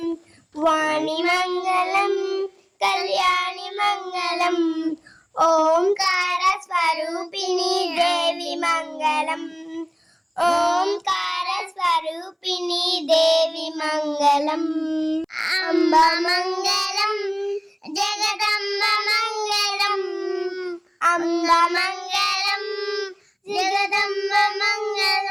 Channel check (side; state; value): both; identical; correlation 1.00